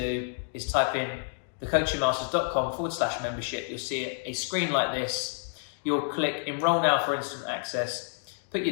is type in thecoachingmasters.com/membership. You'll see a screen like this. You'll click enroll now for instant access, put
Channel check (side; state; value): right; silent; 58 dB below the other